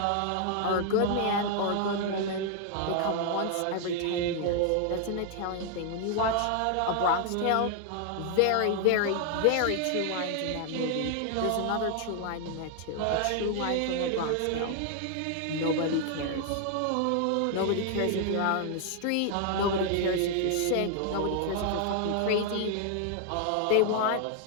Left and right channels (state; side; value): different; both; correlation 0.00